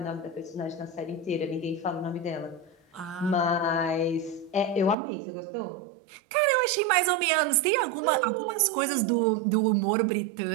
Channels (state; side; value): drops out; left; at 5.0 s